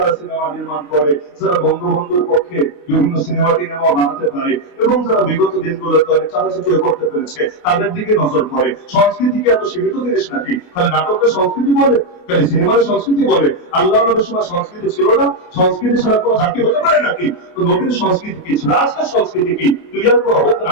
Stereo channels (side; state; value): right; late; 28 ms